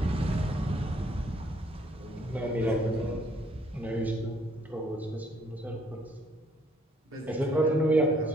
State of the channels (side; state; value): both; normal; correlation 0.65